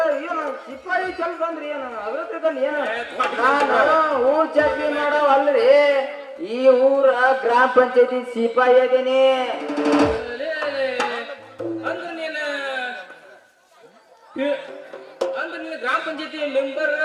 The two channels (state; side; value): identical; both; correlation 1.00